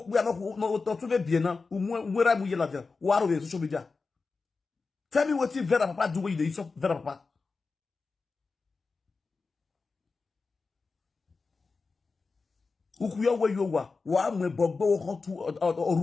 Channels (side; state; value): right; quieter; 4.3 dB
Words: we are not to be now, where I'm with you, what are we social media? Tell me what you Vera Papa do with you, Vera Papa. Who where you were, why me Bobo to or